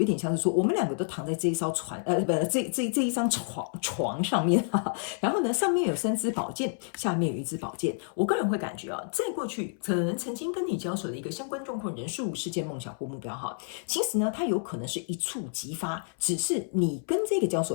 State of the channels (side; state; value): right; silent; 58 dB below the other